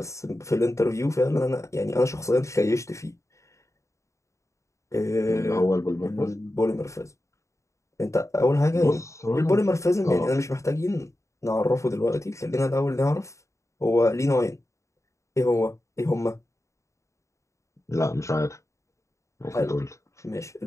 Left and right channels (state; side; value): late; right; 0.15 ms